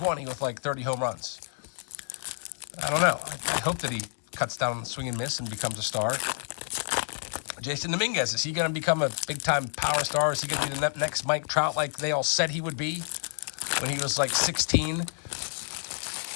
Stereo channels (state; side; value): silent; right; 59 dB below the other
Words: with like 30 home runs? I don't know. I hope that he cuts down on the swing and miss and becomes a star. Jason Dominguez, is he going to become a big-time power star? Is he going to be the next Mike Trout like they all said he would be when he was like 16?